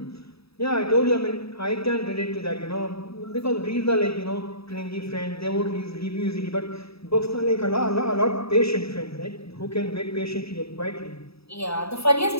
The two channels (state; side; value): late; right; 0.77 ms